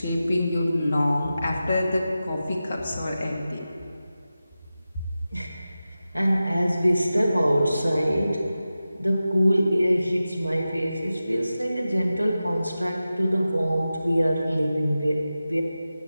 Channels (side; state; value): both; inverted; correlation -0.94